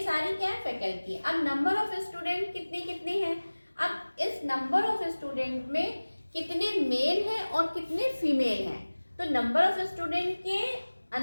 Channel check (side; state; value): both; inverted; correlation -1.00